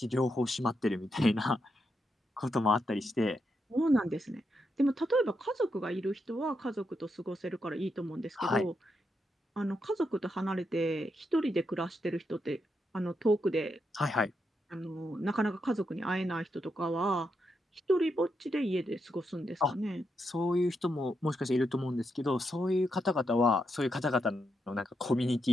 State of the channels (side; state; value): both; normal; correlation 0.83